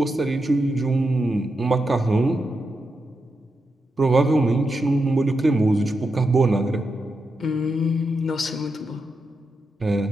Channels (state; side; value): normal; both; correlation 0.86